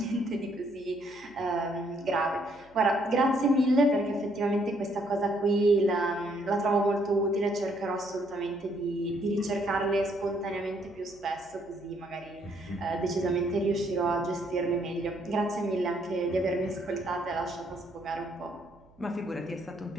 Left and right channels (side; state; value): right; noise; hum, 29 dB below the sound